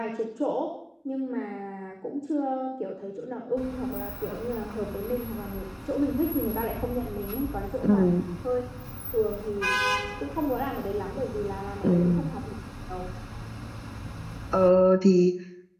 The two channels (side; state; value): both; identical; correlation 1.00